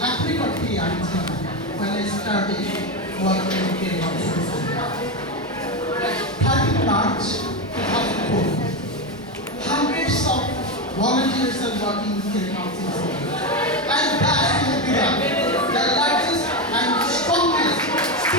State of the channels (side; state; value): both; normal; correlation 0.12